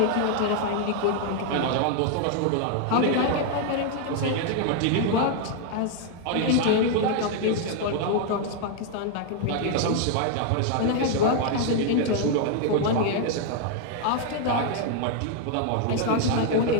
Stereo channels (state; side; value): different; both; correlation 0.00